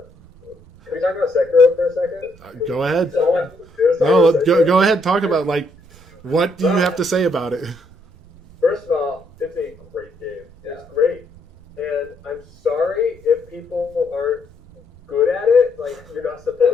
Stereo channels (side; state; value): both; normal; correlation 0.73